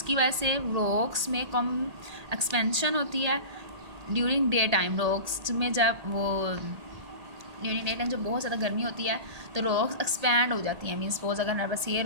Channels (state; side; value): late; left; 1.8 ms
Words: वजह से रॉक्स में कम एक्सपेंशन होती है. ड्यूरिंग डे टाइम रॉक्स में ड्यूरिंग डे टाइम जब बहुत ज़्यादा गर्मी होती है तो रॉक्स एक्सपैंड हो जाती हैं. मीन्स सपोज अगर हमारे पास ये